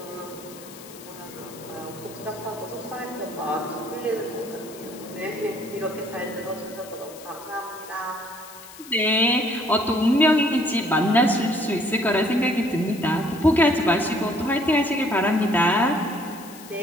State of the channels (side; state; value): left; noise; hiss, 18 dB below the sound